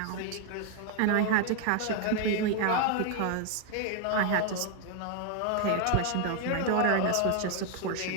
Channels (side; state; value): both; different; correlation 0.01